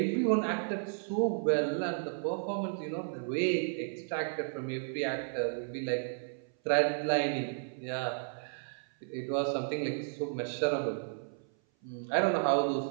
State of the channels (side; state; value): left; silent; 56 dB below the other